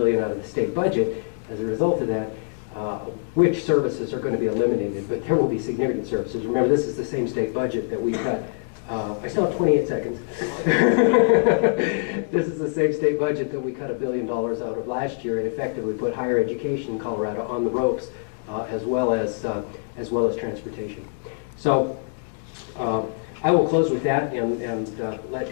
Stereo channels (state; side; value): silent; right; digital silence